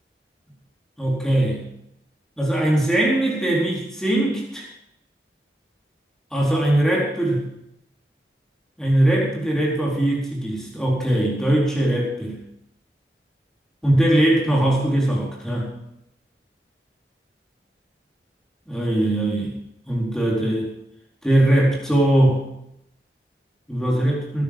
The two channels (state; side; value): normal; both; correlation 0.87